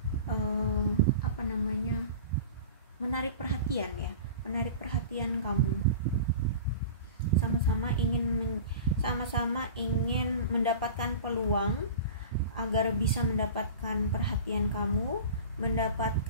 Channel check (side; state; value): both; inverted; correlation -0.36